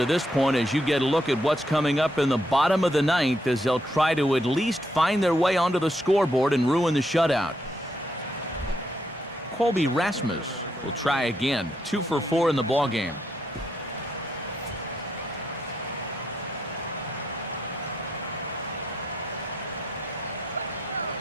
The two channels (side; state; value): both; normal; correlation 0.77